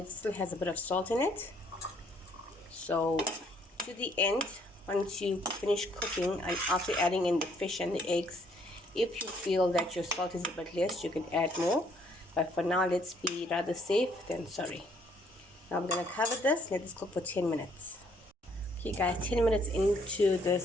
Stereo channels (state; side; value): normal; both; correlation 0.66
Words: it still has a bit of salt in it. So to the end, once you finish cooking and after adding in the fish and the eggs, if you feel that your salt is a bit less, you can add more. But for now, let's be rather safe than sorry. Now I'm going to cover this, let this cook for 10 minutes. Okay guys, 10 minutes into